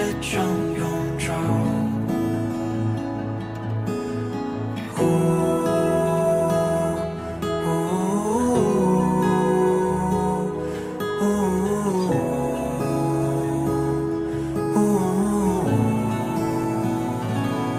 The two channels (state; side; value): identical; both; correlation 1.00